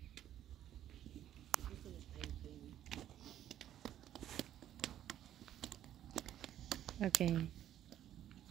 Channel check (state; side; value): quieter; left; 11.5 dB